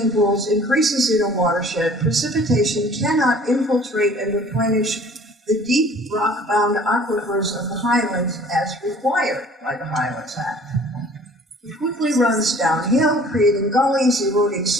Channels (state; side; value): normal; both; correlation 0.51